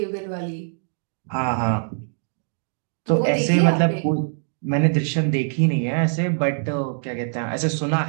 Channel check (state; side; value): silent; left; digital silence